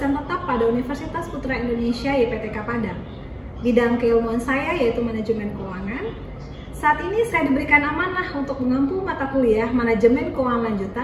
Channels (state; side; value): identical; both; correlation 1.00